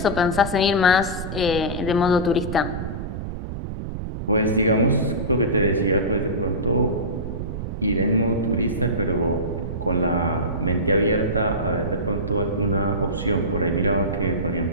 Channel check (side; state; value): right; noise; rumble, 6 dB below the sound